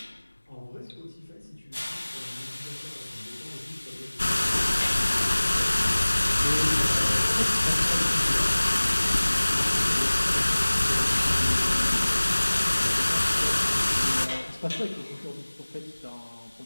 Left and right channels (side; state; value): both; inverted; correlation -1.00